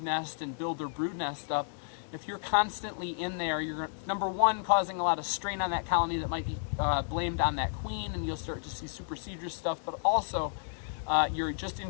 nest and build their brood nest up, if you're constantly in there, you're, number one, causing a lot of strain on that colony that might be blamed on that queen, and you'll start to see supersedure stuff, but also you're just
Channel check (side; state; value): right; silent; digital silence